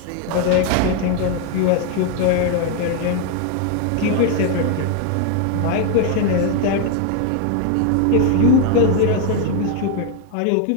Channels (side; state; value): both; different; correlation 0.01